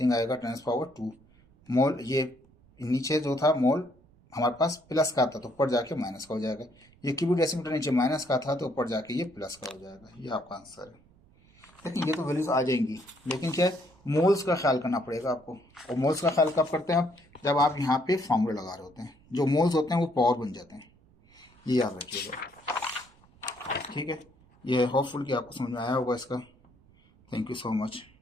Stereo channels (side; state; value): right; noise; rumble, 29 dB below the sound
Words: आएगा, 10⁻²। मोल ये नीचे जो था मोल हमारे पास प्लस का था तो ऊपर जाके माइनस का हो जाएगा, ये क्यूबिक डेसीमीटर नीचे माइनस का था तो ऊपर जाके ये प्लस का हो जाएगा। ये आपका आंसर है। लेकिन ये तो वैल्यूज आ जाएंगी, लेकिन क्या है, मोल्स का ख्याल करना पड़ेगा आपको। और मोल्स का ख्याल कब करते हैं आप, जब आप यहाँ पे फॉर्मूला लगा रहे होते हैं, जो मोल्स होते हैं वो पावर बन जाते हैं, ये याद रखिएगा, ठीक है। ये होपफुल कि आपको समझ में आया होगा इसका। Thank you so much.